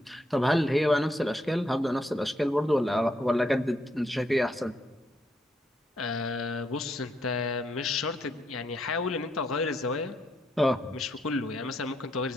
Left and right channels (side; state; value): both; normal; correlation 0.76